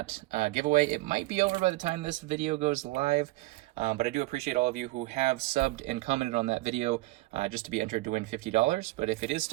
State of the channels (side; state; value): left; quieter; 19.5 dB